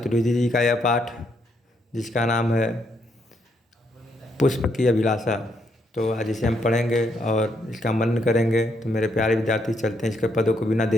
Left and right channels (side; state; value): both; normal; correlation 0.75